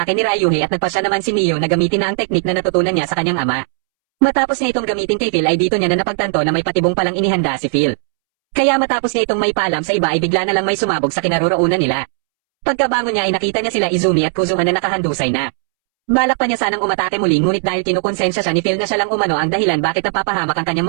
ni Ryuhei at nagpasya naman si Miyu na gamitin na ang teknik na natutunan niya sa kanyang ama. Matapos niya itong gamitin kay Phil ay dito niya na napagtanto na may patibong palang inihanda si Phil. Kaya matapos niya itong may paalam sa iba ay bigla na lang may sumabog sa kinaroroonan nila. Pagkabangon niya ay nakita niya sila Izumi at Kuzuha na nakahandusay na. Balak pa niya sanang umatake muli ngunit dahil kinukonsensya siya ni Phil na siya lang umano ang dahilan bakit napapahamak ang kanyang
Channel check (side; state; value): left; silent; 69 dB below the other